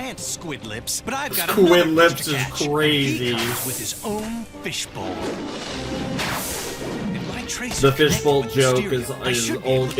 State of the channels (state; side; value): identical; both; correlation 1.00